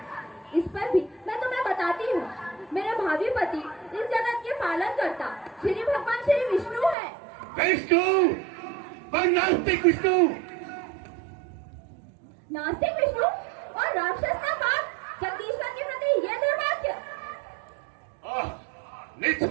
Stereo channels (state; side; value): drops out; left; at 7.0 s